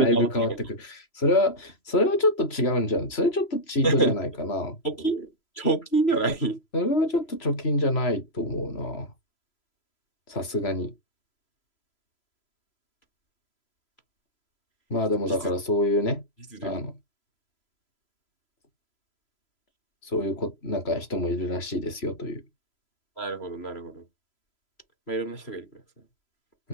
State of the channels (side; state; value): right; late; 3.0 ms